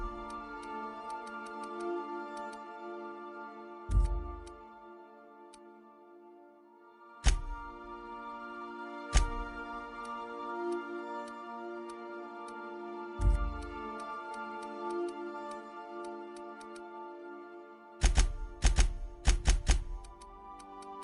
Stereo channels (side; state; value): both; identical; correlation 1.00